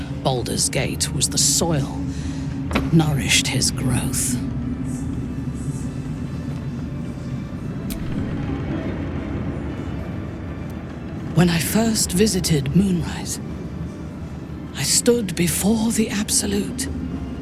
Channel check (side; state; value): both; identical; correlation 1.00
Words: Baldur's Gate was the soil that nourished his growth. When I first visited Moonrise, I stood before the Absolute